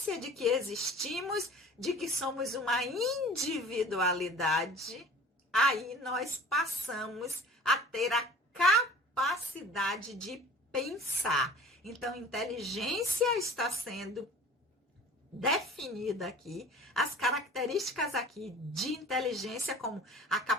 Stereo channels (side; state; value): both; normal; correlation 0.44